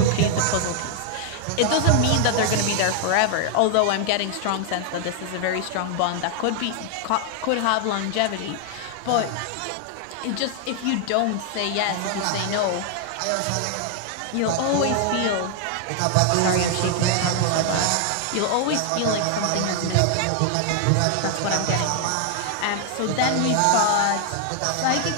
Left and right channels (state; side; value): different; both; correlation 0.00